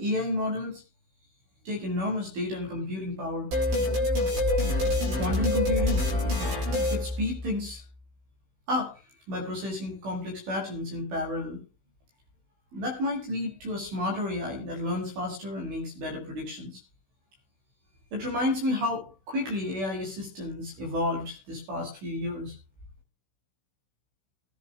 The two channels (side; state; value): left; late; 16 ms